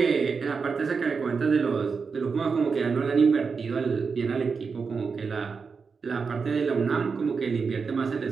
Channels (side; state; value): left; quieter; 5.2 dB